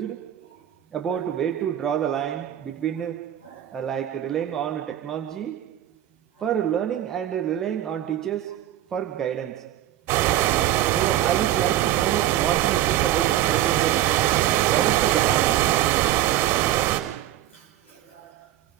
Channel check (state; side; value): quieter; left; 12.6 dB